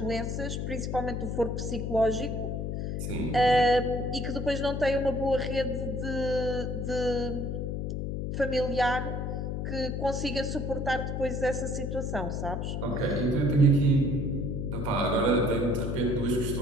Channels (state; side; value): noise; left; hum, 2 dB below the sound